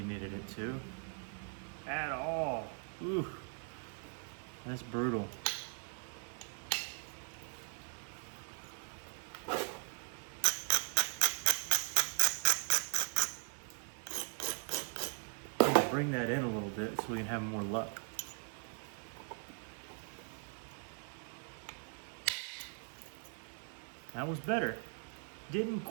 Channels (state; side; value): silent; left; 51 dB below the other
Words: needed it to. At all. Ooh. That's brutal. Bring that in a little bit so we can have more luck. That was better. Didn't